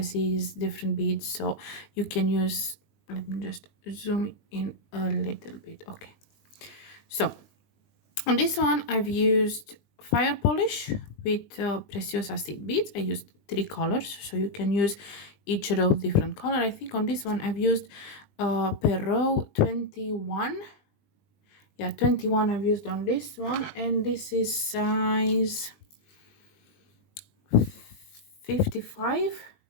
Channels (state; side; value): late; right; 20 ms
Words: different beads, so you can use... Let me just zoom in a little bit. Okay. So on this one, I've used fire polish with precious acid beads. I used 3 colors, so you can use each row different color. I think on this one I've used per row 21. Yeah, 21 I've used on this one, and this is size 55.